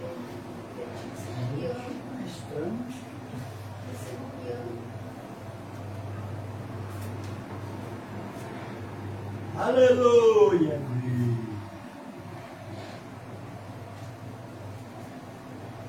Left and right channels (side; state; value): both; identical; correlation 1.00